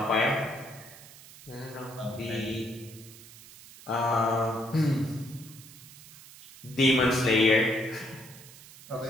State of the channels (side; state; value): right; noise; hiss, 19 dB below the sound